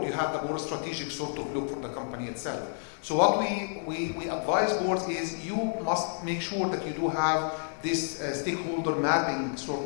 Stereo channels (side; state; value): right; silent; 58 dB below the other